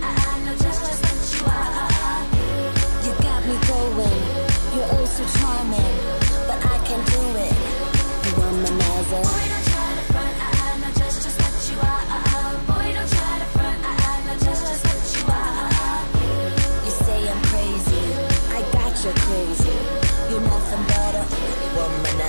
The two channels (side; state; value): both; inverted; correlation -1.00